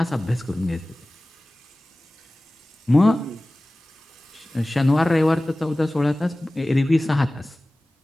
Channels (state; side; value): normal; both; correlation 0.97